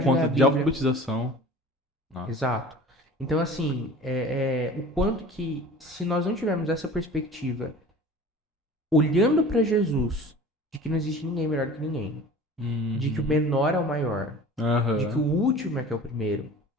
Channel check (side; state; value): both; normal; correlation 0.42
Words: de ler conta a de Bíblia. alfabetização. Não. Exato. Então, assim, o quanto que, se nós não tivermos essa perspectiva, olhando para Jesus, de que não existe ninguém melhor que ninguém, de que o Uhum. menor é o maior, de que o Aham. último é que é o primeiro,